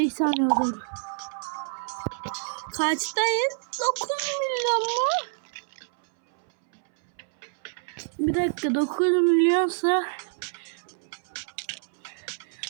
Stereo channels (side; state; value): left; silent; 60 dB below the other